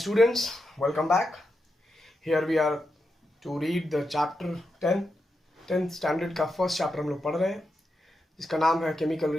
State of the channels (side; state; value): both; normal; correlation 0.87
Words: Welcome back. Here we are to read the chapter 10th standard का फर्स्ट चैप्टर हम लोग पढ़ रहे हैं जिसका नाम है केमिकल